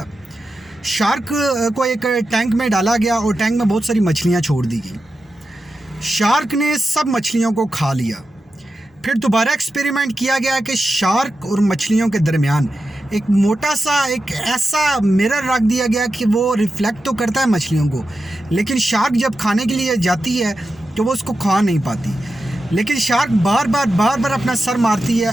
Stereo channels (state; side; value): normal; both; correlation 0.90